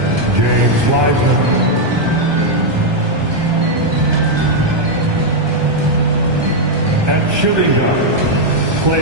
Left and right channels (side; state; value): left; late; 1.2 ms